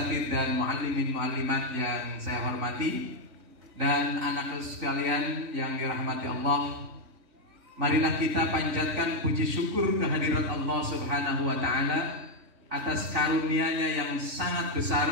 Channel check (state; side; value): late; left; 3.9 ms